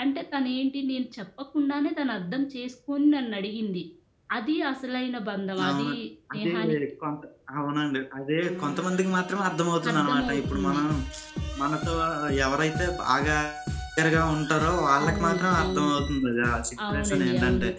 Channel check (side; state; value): both; identical; correlation 1.00